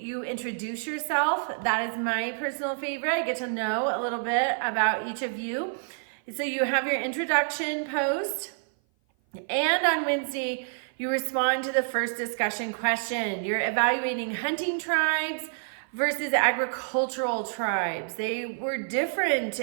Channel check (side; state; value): left; silent; 56 dB below the other